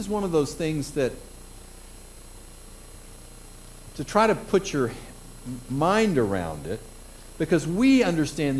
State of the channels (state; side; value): identical; both; correlation 1.00